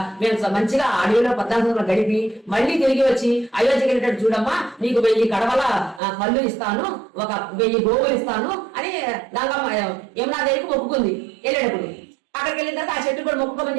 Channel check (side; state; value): left; drops out; at 6.0 s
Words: మేము మంచిగా అడవిలో 14 సంవత్సరాలు గడిపి మళ్ళీ తిరిగి వచ్చి అయోధ్యకి వెళ్ళేటట్టు చూడమ్మా, నీకు 1000 కడవల కళ్ళు ఇస్తాను, ఒక 1000 గోవులు ఇస్తాను అని గంగమ్మ యమునాదేవికి మొక్కుకుంది. వెళ్ళేటప్పుడు అక్కడికి వెళ్ళిన తర్వాత ఆ చెట్టు కూడా మొక్కుకోమని